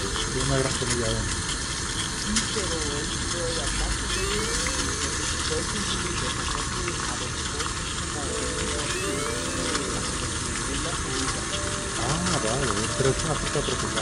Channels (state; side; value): identical; both; correlation 1.00